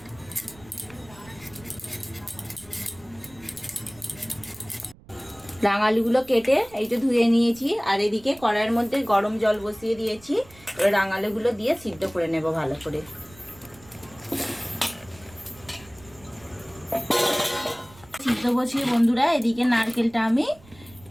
রাঙা আলুগুলো কেটে এই যে ধুয়ে নিয়েছি, আর এদিকে কড়াইয়ের মধ্যে গরম জল বসিয়ে দিয়েছি। এবার রাঙা আলুগুলো দিয়ে সিদ্ধ করে নেব ভালো করে। সিদ্ধ বসিয়ে বন্ধুরা এদিকে নারকেলটা আমি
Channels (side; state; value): right; noise; rumble, 23 dB below the sound